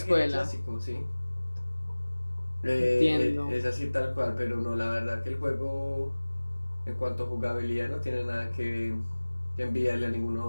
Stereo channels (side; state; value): both; inverted; correlation -1.00